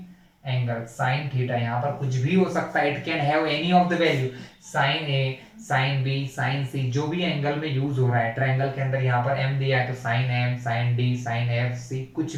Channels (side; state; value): both; identical; correlation 1.00